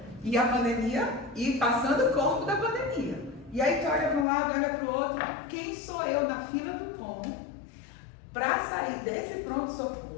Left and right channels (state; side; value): drops out; right; at 4.2 s